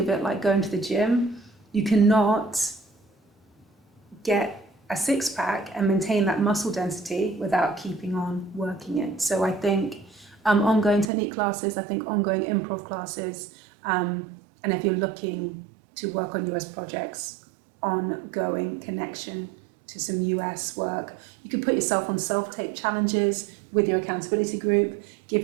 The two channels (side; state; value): left; drops out; at 11.1 s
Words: it like going to the gym. You cannot get a six-pack and maintain that muscle density without keeping on working it. So I think ongoing technique classes, I think ongoing improv classes, and if you're looking to work on US projects, ongoing connection to some US work. You can put yourself on self-tape challenges with your accountability group, give